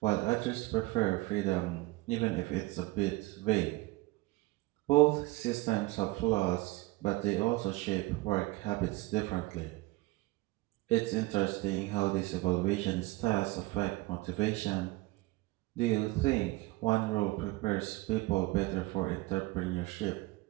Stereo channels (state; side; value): quieter; left; 21.1 dB